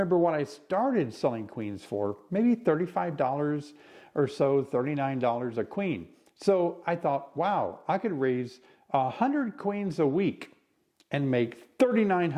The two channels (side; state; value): both; identical; correlation 1.00